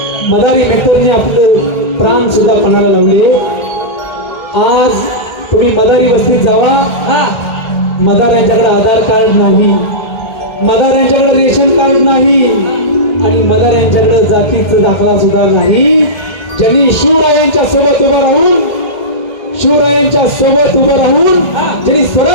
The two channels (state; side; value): late; right; 2.1 ms